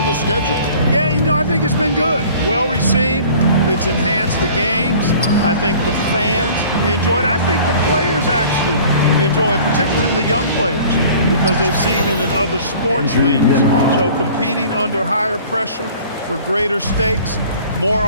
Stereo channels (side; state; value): both; inverted; correlation -0.48